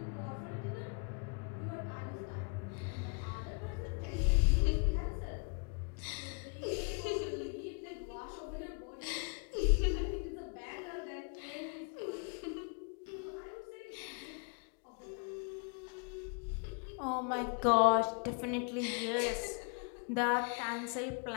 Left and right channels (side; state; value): right; quieter; 38.1 dB